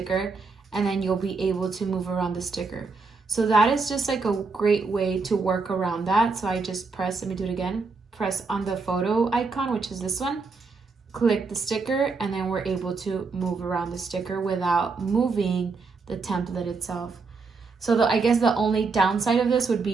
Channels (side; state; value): left; quieter; 4.4 dB